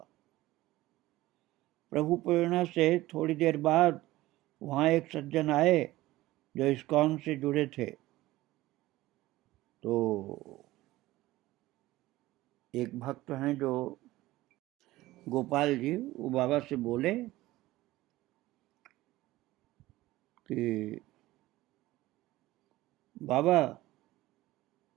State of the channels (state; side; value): quieter; left; 17.4 dB